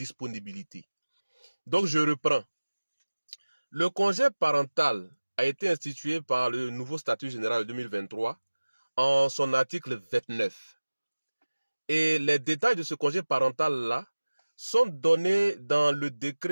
Donc je reprends. Le congé parental a été institué par le nouveau statut général de 2023 en son article 29. Et les détails de ce congé parental-là sont donnés dans le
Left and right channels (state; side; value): inverted; both; correlation -1.00